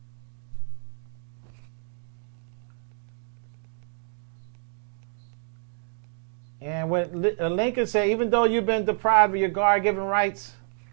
And when Lincoln said, even though you've been deprived of your God-given rights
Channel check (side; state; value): left; silent; 59 dB below the other